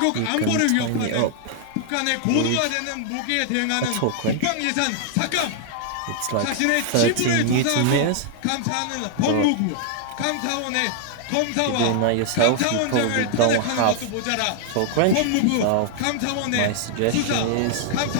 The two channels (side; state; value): both; different; correlation 0.00